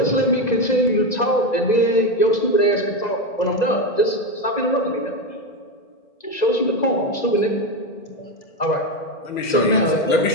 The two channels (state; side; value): late; right; 2.0 ms